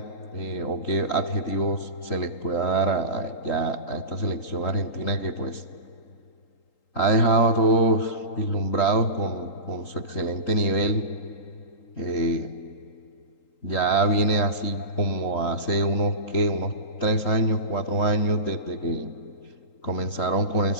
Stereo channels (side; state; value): right; late; 3.8 ms